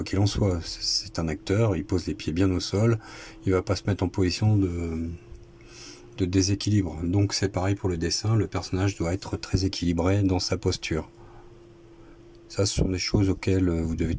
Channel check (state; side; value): identical; both; correlation 1.00